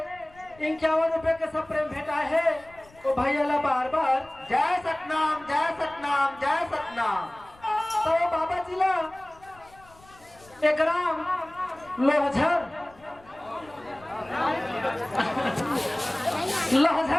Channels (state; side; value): noise; left; rumble, 26 dB below the sound